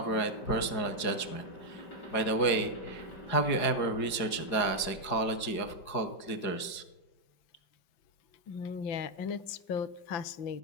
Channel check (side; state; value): right; late; 4.9 ms